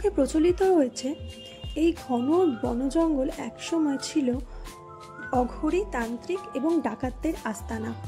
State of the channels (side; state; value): both; identical; correlation 1.00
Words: প্রচলিত রয়েছে এই ঘন বনজঙ্গল একসময় ছিল অঘরী, তান্ত্রিক এবং ডাকাতদের আস্তানা।